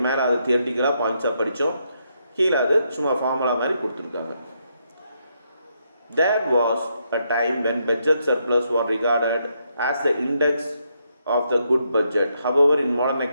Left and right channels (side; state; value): both; inverted; correlation -0.78